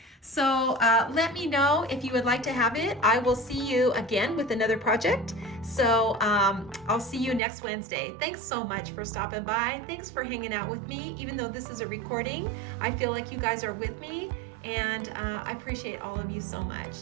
So let me know if you would like to have it. I will see you again with another project. So I'll see you next Wednesday. Thanks so much for stopping by. Thanks for hanging out with me. Even though this is a recording, I feel like you guys are with me, and I appreciate all of you so much.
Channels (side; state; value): left; drops out; at 7.4 s